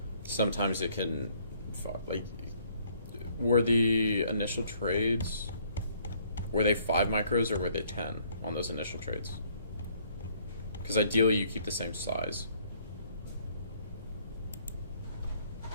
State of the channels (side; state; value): both; inverted; correlation -0.63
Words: sometimes it can, like, were the initial trades, were they 5 micros or were they 10 on those initial trades? Because ideally you keep the same size.